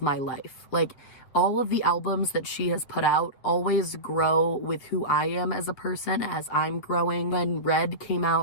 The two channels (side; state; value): right; late; 8.4 ms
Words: my life. Like all of the albums that she has put out always grow with who I am as a person as I'm growing. When Red came